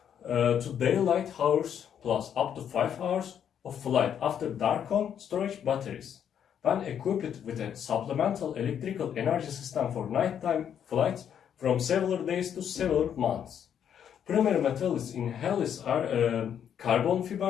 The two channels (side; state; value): right; quieter; 8.8 dB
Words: to daylight hours plus up to 5 hours of flight after dark on storage batteries. When equipped with a supplemental electrical energy system for nighttime flights from several days to several months. Primary materials in Helios are carbon